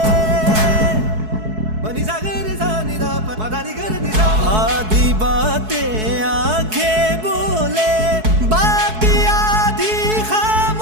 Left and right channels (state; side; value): late; left; 4.7 ms